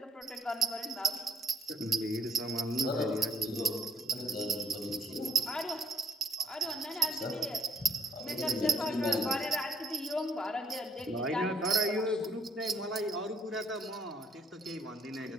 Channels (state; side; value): normal; both; correlation 0.67